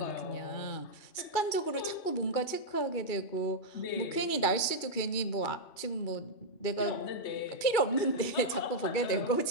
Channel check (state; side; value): late; right; 2.4 ms